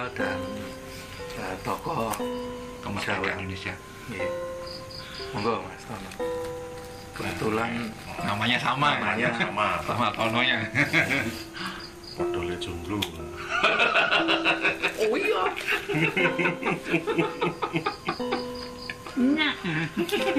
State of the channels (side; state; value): both; identical; correlation 1.00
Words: dan tokoh kemerdekaan Indonesia. Ya. Monggo Mas Tono. Kebetulan namanya sama Tononya. Podole jomblo. Oh iya. Nah,